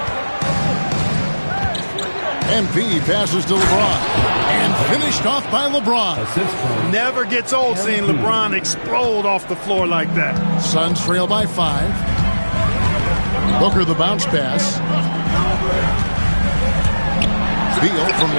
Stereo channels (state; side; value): inverted; both; correlation -1.00